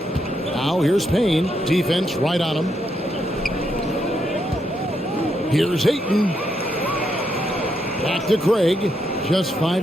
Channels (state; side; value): normal; both; correlation 0.79